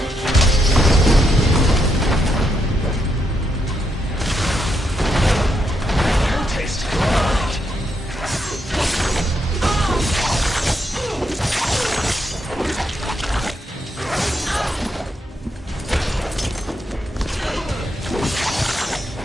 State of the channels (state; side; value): normal; both; correlation 0.80